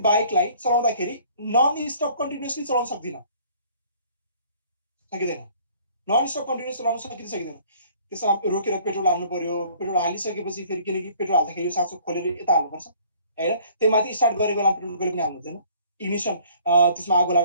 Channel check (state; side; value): inverted; both; correlation -0.55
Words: बाइकलाई चलाउँदाखेरि नन स्टप कन्टिन्युसली चलाउन सकिँदैन। नन स्टप कन्टिन्युस चलाउन सकिँदैन। त्यसमा रोकेर पेट्रोल हाल्नु पर्यो। पेट्रोल हालिसकेपछि फेरि, किनकि पेट्रोल हाल्दाखेरि यो साँचो खोलेर यता हाल्नुपर्छ होइन, त्यही माथि स्टार्ट गरेको बेला पेट्रोल कहिले पनि हाल्नु हुँदैन। इग्निसन त्यसमा आगो